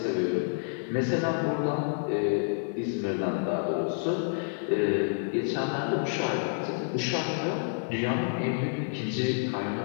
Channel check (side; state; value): right; silent; 59 dB below the other